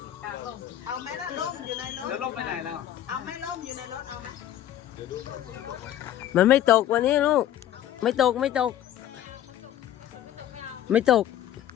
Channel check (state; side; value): quieter; right; 11.8 dB